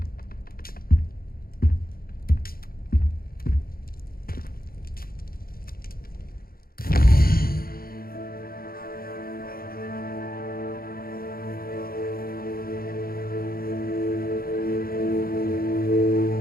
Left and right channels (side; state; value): right; late; 0.43 ms